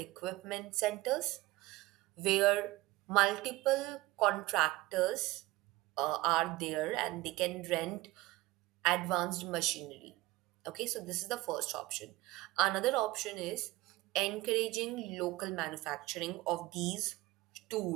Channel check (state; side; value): quieter; left; 19.0 dB